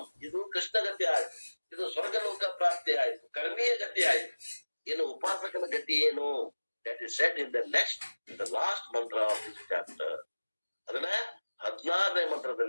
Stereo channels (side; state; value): both; inverted; correlation -1.00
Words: ಇದು ಕೃಷ್ಣಗತಿ ಆಯ್ತು, ಇದು ಸ್ವರ್ಗಲೋಕ ಪ್ರಾಪ್ತಿ ಆಯ್ತು, ಕರ್ಮೀಯ ಗತಿ ಆಯ್ತು. ಇನ್ನು ಉಪಾಸಕನ ಗತಿ ಏನು? That is said in the next, the last ಮಂತ್ರ ಆಫ್ ದಿಸ್ ಚಾಪ್ಟರ್. ಅದನ್ನ 16ನೇ